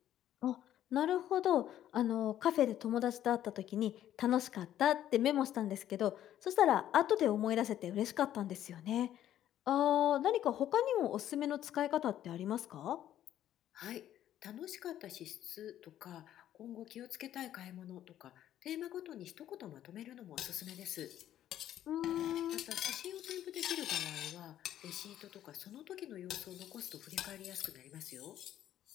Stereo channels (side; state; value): right; quieter; 11.8 dB